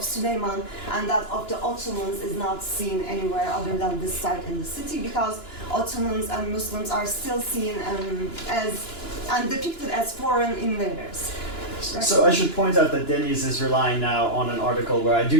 Süleyman and that of the Ottomans is not seen anywhere other than this site in the city, because Ottomans and Muslims are still seen and depicted as foreign invaders. So I should point out that Deniz is relying now on an article where I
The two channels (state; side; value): late; right; 2.9 ms